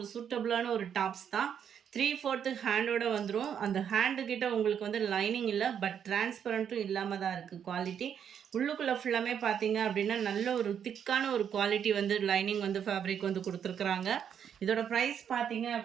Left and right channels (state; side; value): quieter; left; 8.3 dB